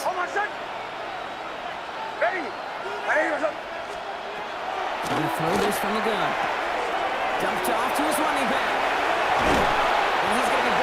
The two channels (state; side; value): identical; both; correlation 1.00